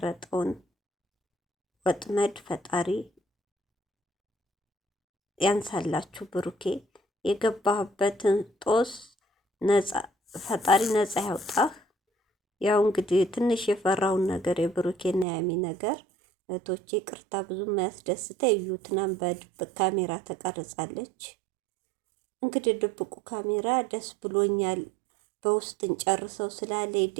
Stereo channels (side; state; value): left; drops out; at 15.2 s